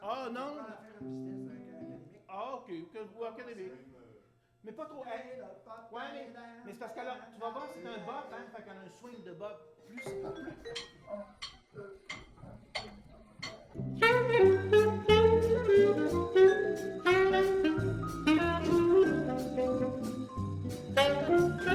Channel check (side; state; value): both; identical; correlation 1.00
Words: Ah non! On va faire une petite test académique. Ah, ok, ou académique. Mais pas trop. Hey, ouais, mais c'est parce que là, tu vas voir, c'est un bop, hein, fait qu'on a un swing de bop plus.